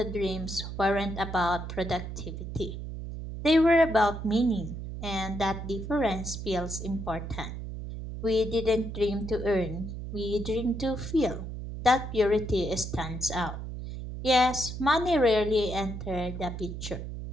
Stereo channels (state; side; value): noise; right; hum, 7 dB below the sound